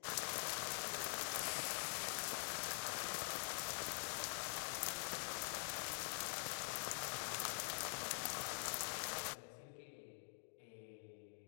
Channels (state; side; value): silent; right; digital silence